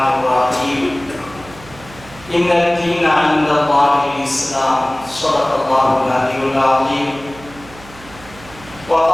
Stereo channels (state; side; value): noise; right; hum, 20 dB below the sound